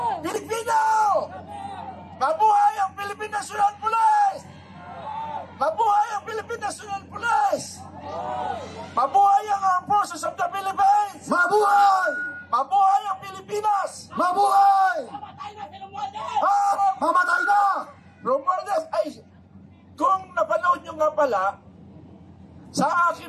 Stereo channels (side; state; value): both; identical; correlation 1.00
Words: Pilipino! Mabuhay ang Philippine National Police! Mabuhay ang Philippine National Police! Mabuhay ang Armed Forces of the Philippines! Mabuhay! Mabuhay ang Pilipinas! Mabuhay! Mamatay na! Romualdez, ay, kung napanood nyo nga pala, sa